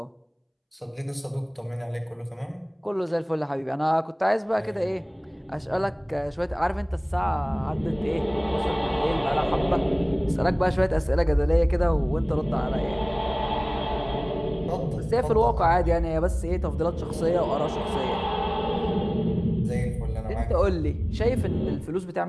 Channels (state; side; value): identical; both; correlation 1.00